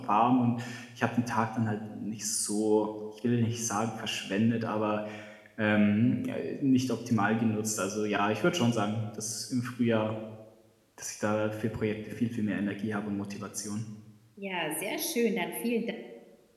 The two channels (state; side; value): identical; both; correlation 1.00